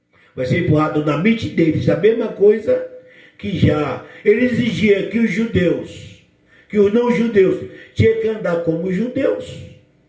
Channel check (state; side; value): identical; both; correlation 1.00